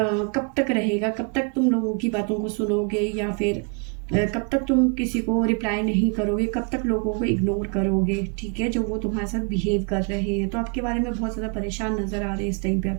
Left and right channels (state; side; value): quieter; left; 36.6 dB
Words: तक रहेगा, कब तक तुम लोगों की बातों को सुनोगे, या फिर कब तक तुम किसी को रिप्लाई नहीं करोगे, कब तक लोगों को इग्नोर करोगे। ठीक है, जो वो तुम्हारे साथ बिहेव कर रहे हैं, तो आपके बारे में बहुत ज़्यादा परेशान नज़र आ रहे हैं इस टाइम पे